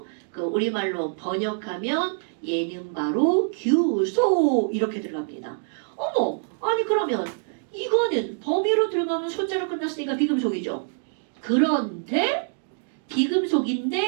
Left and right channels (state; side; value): silent; left; digital silence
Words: 그 우리말로 번역하면 얘는 바로 규소 이렇게 들어갑니다. 어머, 아니 그러면 이거는 범위로 들어가면 소자로 끝났으니까 비금속이죠. 그런데